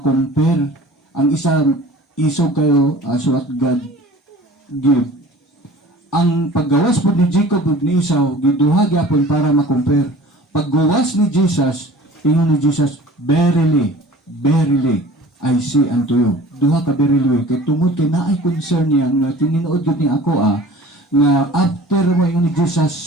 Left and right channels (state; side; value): normal; both; correlation 0.44